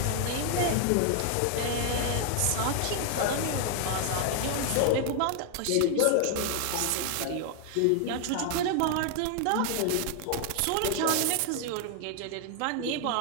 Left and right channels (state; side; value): different; both; correlation 0.00